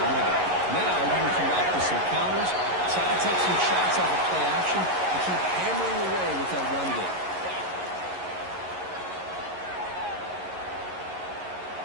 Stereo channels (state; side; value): late; left; 11 ms